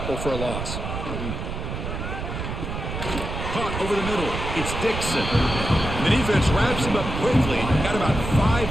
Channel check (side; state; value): right; noise; rumble, 5 dB below the sound